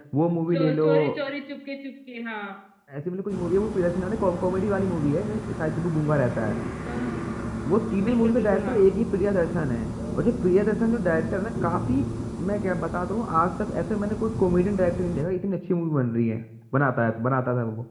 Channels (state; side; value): identical; both; correlation 1.00